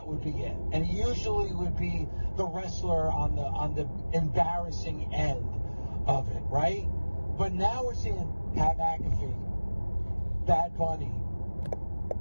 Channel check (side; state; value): both; inverted; correlation -1.00